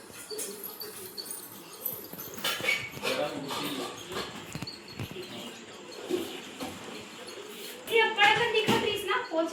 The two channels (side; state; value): both; identical; correlation 1.00